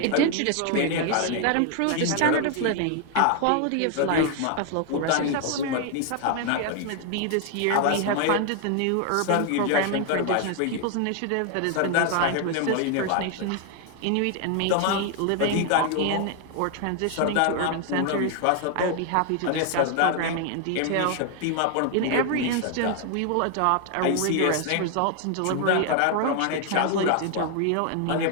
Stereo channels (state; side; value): different; both; correlation 0.00